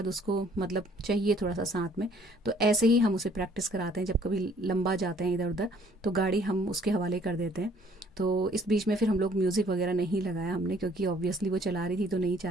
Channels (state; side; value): normal; both; correlation 0.60